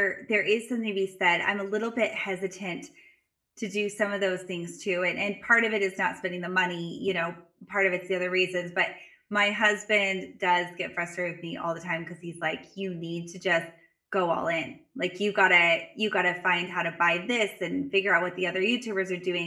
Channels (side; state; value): both; identical; correlation 1.00